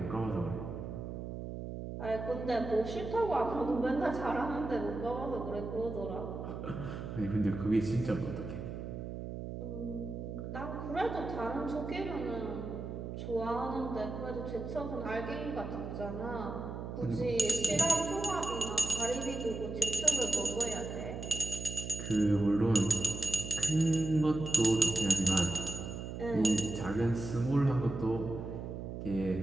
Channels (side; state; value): right; noise; hum, 7 dB below the sound